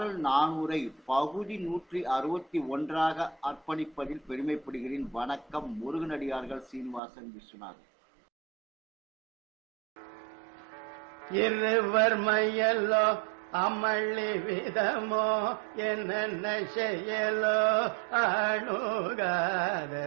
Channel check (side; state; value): left; drops out; at 7.0 s